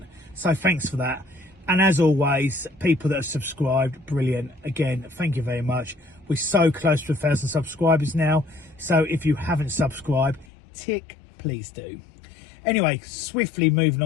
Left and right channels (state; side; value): drops out; right; at 10.5 s